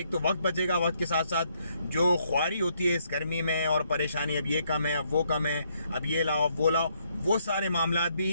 تو وقت بچے گا, وقت کے ساتھ ساتھ جو خواری ہوتی ہے اس گرمی میں اور پریشانی, اب یہ کم ہے, اب وہ کم ہے, اب یہ لاؤ اب وہ لاؤ, وہ سارے معاملات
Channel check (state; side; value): inverted; both; correlation -0.72